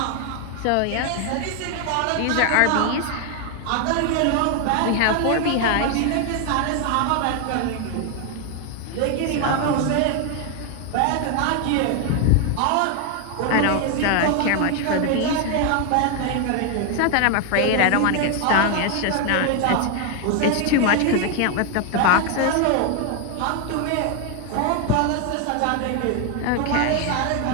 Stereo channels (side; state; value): both; different; correlation 0.01